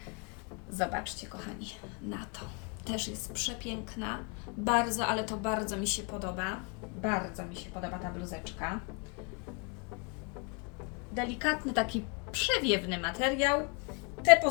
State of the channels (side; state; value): right; quieter; 34.0 dB